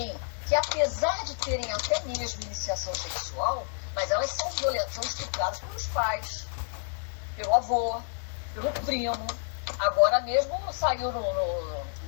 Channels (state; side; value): silent; right; digital silence